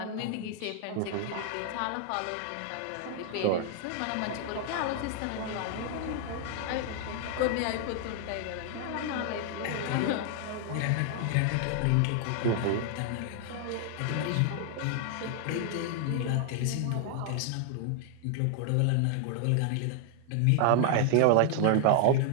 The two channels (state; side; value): different; both; correlation 0.00